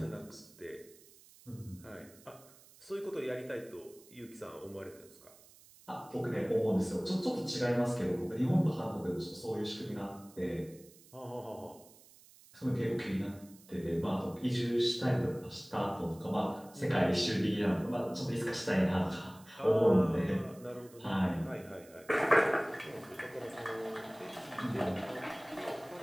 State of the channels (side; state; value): right; noise; hiss, 24 dB below the sound